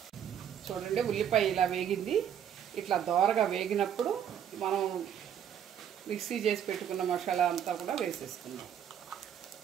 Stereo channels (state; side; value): quieter; left; 9.2 dB